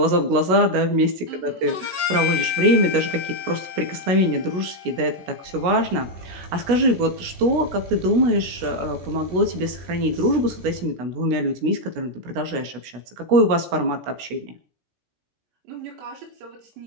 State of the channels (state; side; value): late; left; 16 ms